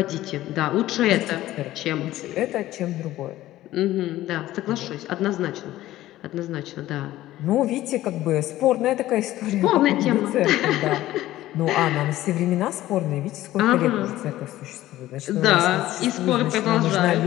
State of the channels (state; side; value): quieter; right; 15.1 dB